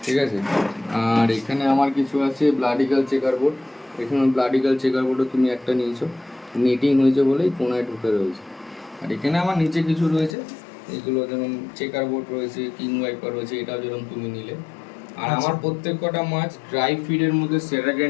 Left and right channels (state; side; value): drops out; right; at 10.4 s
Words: ঠিক আছে? আর এখানে আমার কিছু আছে ব্লাডিগাল চেকার বোর্ড। এখানে ব্লাডিগাল চেকার বোর্ডও তুমি একটা নিয়েছো, নেটিং হয়েছে বলেই কোনায় ঢুকে রয়েছে। আর এখানে আমার নিচে কিছু রয়েছে, এগুলো যেমন চেকার বোর্ড রয়েছে, কিং ওয়াইপার রয়েছে, এটাও যেরকম তুমি নিলে। আর আমার প্রত্যেক কটা মাছ ড্রাই ফিডের মধ্যে সেরা